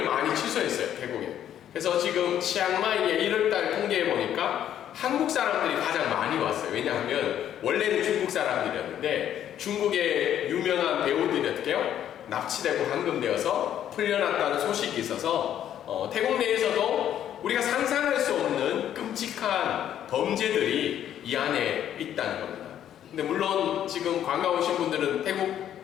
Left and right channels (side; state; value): right; quieter; 10.6 dB